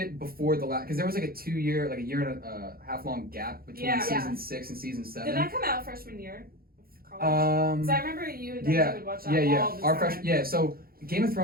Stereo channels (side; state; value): left; late; 0.43 ms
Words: before the last because there was like a year and a half long gap between Yeah. season 6 and season 7. Did that come out freshman year of college? Because I remember you and Debbie would watch that all the Our time. So Game of